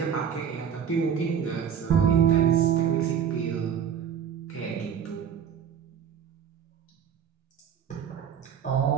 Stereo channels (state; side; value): quieter; left; 8.2 dB